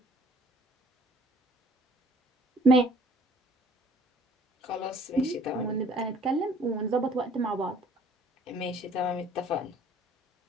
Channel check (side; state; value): both; normal; correlation 0.55